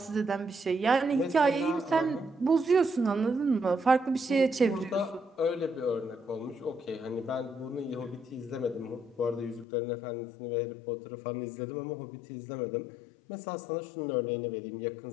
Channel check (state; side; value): drops out; right; at 9.7 s